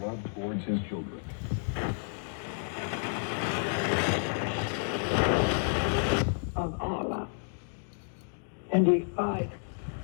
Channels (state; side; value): silent; right; digital silence